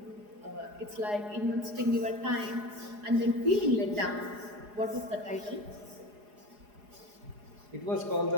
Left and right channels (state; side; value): late; left; 4.8 ms